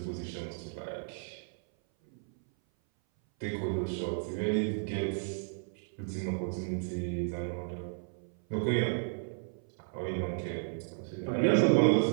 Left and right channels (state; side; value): silent; left; 56 dB below the other